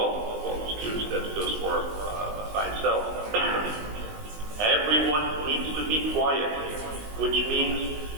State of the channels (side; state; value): left; late; 19 ms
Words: the students that goes for by itself, everyone needs to be quiet, which means